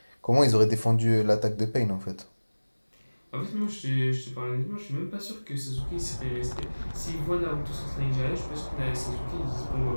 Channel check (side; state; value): both; inverted; correlation -1.00